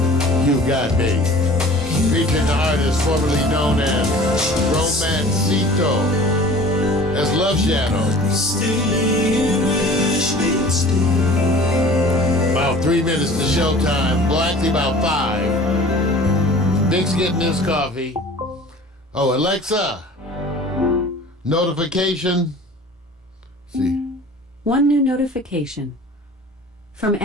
You got me. Featuring the artist formerly known as Romancito, as Love Shadow. About 3 minutes to showtime. Well, actually about 5. Nick's getting his coffee. Oh, Alexa, notification. See. One new notification. From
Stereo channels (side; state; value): both; normal; correlation 0.45